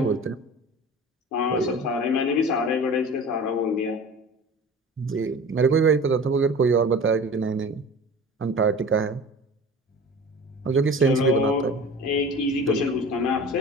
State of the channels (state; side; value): normal; both; correlation 0.38